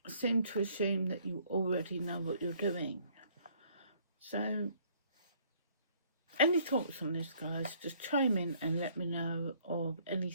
seem to assume that you already know what you're doing. So, any thoughts on this, guys? Just chime in and let me know of any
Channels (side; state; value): both; inverted; correlation -0.62